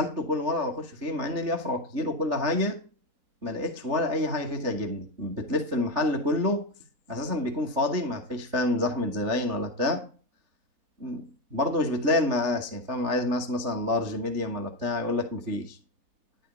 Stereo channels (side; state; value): left; late; 3.4 ms